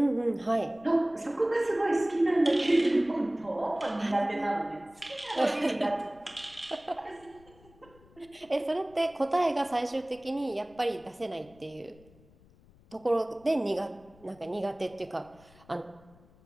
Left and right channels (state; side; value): noise; left; rumble, 27 dB below the sound